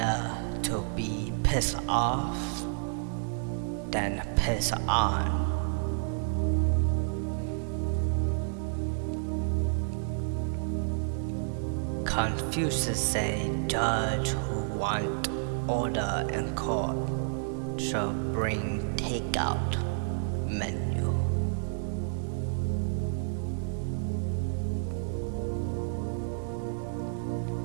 to be pissed off than piss on. Confucius say judge who want order in court shall bring takeout menu.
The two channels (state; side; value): silent; left; digital silence